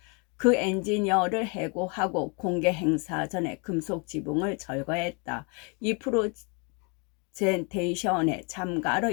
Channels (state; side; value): quieter; right; 33.9 dB